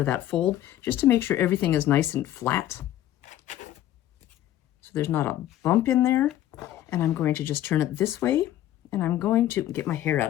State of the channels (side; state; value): right; quieter; 12.9 dB